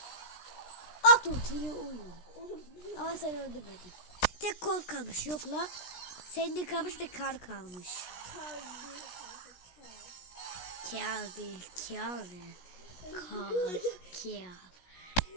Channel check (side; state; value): right; late; 17 ms